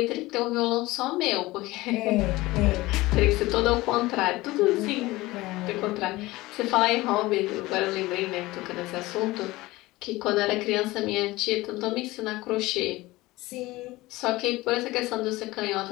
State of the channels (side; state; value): right; quieter; 19.5 dB